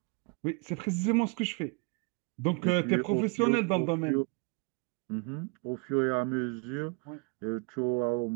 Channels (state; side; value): quieter; left; 31.7 dB